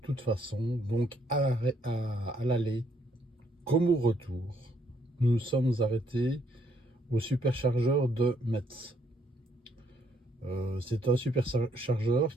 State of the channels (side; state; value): both; normal; correlation 0.70